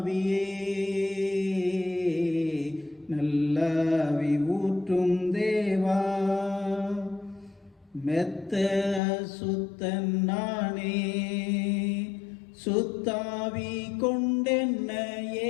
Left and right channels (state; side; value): drops out; right; at 9.0 s